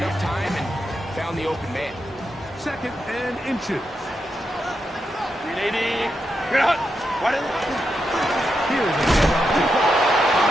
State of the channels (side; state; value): both; normal; correlation 0.85